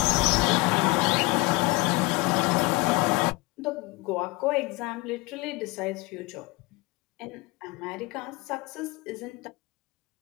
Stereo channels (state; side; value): quieter; right; 24.4 dB